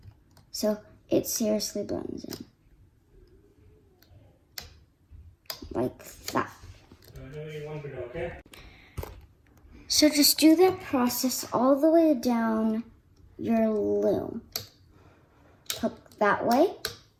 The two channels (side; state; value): both; identical; correlation 1.00